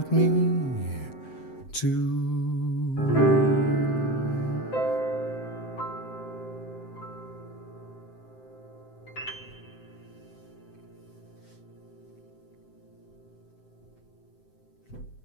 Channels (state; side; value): late; right; 7.7 ms